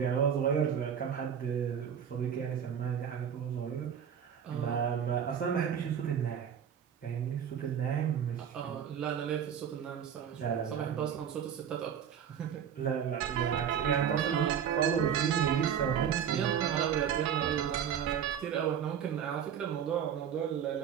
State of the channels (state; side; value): quieter; left; 8.4 dB